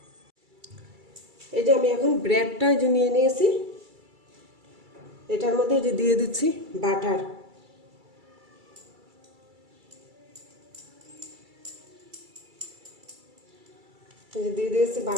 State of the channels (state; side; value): late; left; 2.3 ms